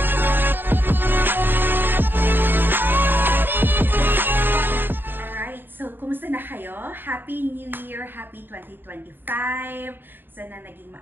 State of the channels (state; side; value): late; left; 0.095 ms